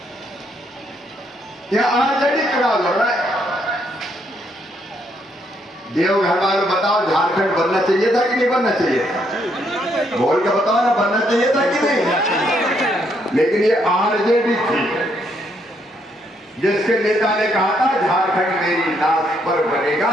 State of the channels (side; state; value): both; normal; correlation 0.73